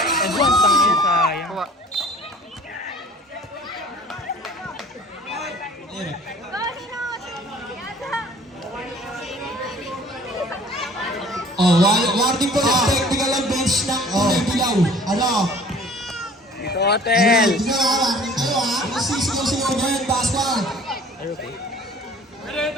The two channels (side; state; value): both; normal; correlation 0.50